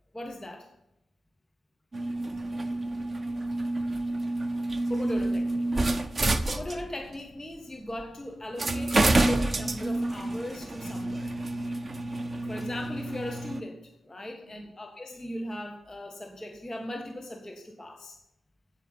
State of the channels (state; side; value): normal; both; correlation 0.96